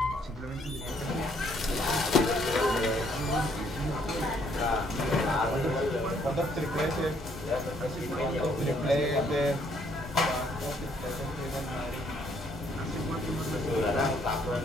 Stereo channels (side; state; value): both; normal; correlation 0.68